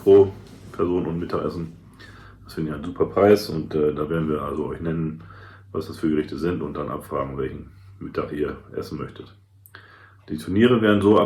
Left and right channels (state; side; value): identical; both; correlation 1.00